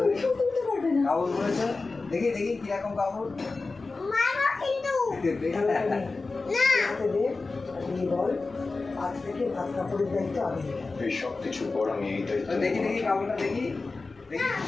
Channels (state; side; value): quieter; right; 3.8 dB